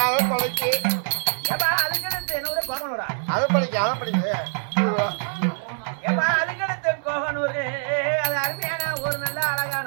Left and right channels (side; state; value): left; silent; digital silence